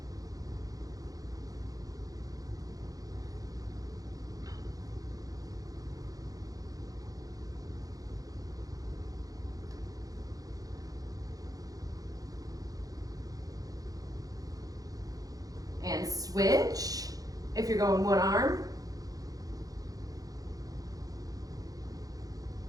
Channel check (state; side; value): late; left; 0.17 ms